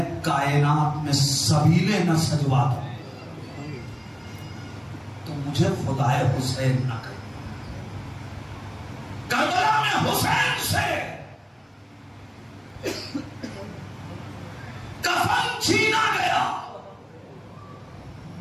کائنات میں سبیلے نہ سجوا دوں تو مجھے خدائے حسین نہ کرے۔ کربلا میں حسین سے کفن چھینا گیا،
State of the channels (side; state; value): both; identical; correlation 1.00